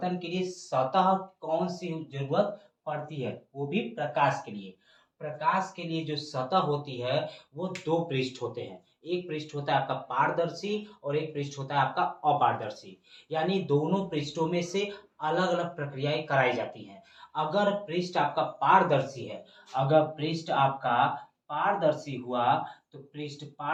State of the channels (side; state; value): both; identical; correlation 1.00